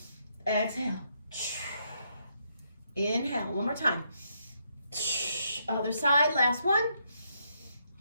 exhale, inhale, one more time. Other side, last one.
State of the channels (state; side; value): inverted; both; correlation -0.76